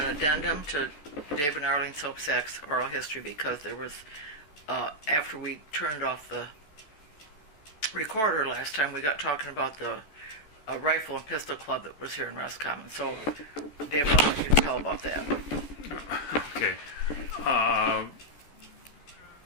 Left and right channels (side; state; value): right; late; 14 ms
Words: addendum to Dave and Arlene Sopscak's oral history because there was, after we turned off the recorder last time, we got talking about the rifle and pistol club that was here in Roscommon. So, David, I'll let you tell about that. Okay.